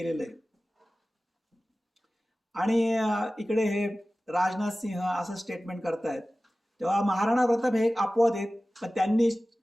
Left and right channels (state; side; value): normal; both; correlation 0.97